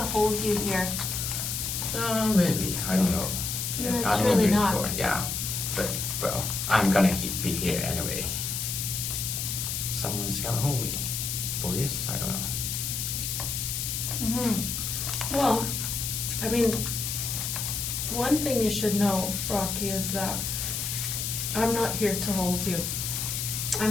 hold you here. Maybe. I don't know. No, it's I don't really know not. before. Yeah. But, well, I'm gonna be here anyway. Someone's gonna hold me. Police? I don't know. Well, I mean, one thing you should know, Rocky, is that I'm not here to hold you.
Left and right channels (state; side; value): noise; left; hiss, 2 dB below the sound